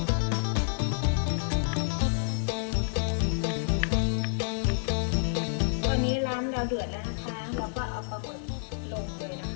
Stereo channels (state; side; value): silent; right; digital silence